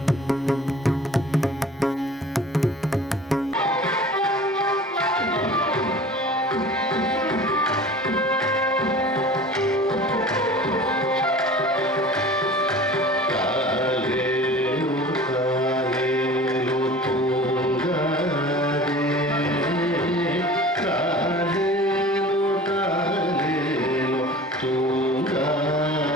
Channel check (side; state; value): both; normal; correlation 0.42